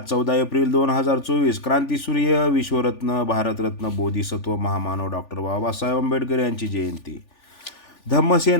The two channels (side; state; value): right; late; 3.4 ms